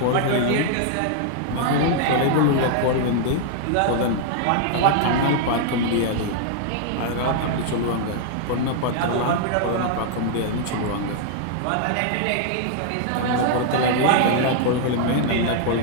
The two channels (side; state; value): both; different; correlation 0.00